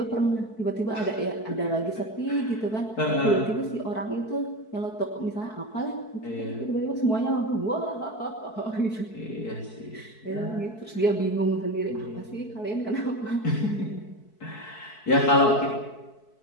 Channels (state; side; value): late; right; 4.6 ms